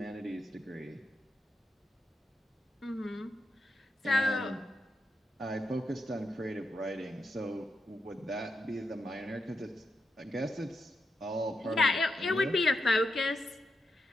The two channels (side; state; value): both; normal; correlation 0.85